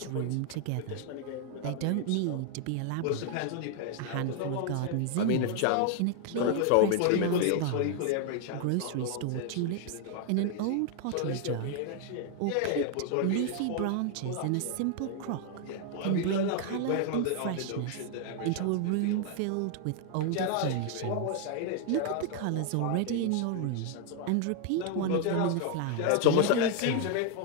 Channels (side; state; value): both; different; correlation 0.00